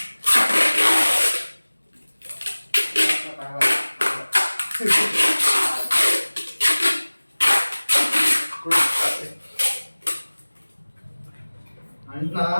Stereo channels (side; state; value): both; inverted; correlation -1.00